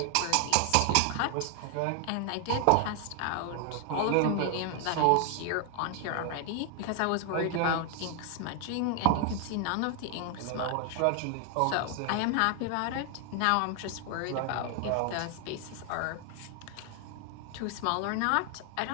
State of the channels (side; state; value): both; different; correlation 0.00